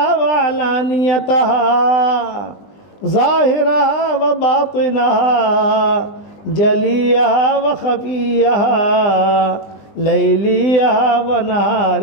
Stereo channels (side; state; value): right; late; 20 ms